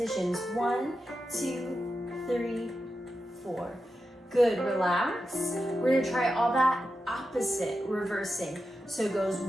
1, 2, 3, 4. Good, relax. We're gonna try all that opposite, reversing. So it goes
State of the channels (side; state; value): both; normal; correlation 0.90